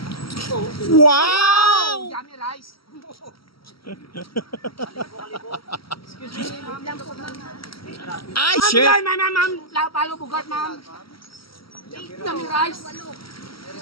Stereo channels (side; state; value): right; late; 0.75 ms